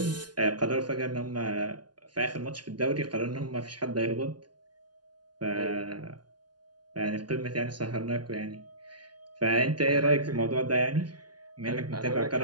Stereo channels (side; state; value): left; late; 0.70 ms